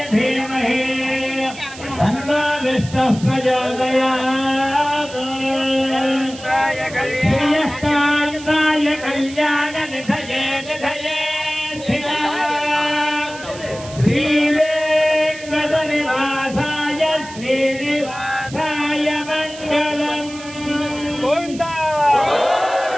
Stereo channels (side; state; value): right; noise; hiss, 16 dB below the sound